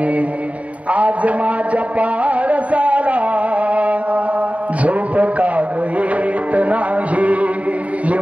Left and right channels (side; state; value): left; late; 0.067 ms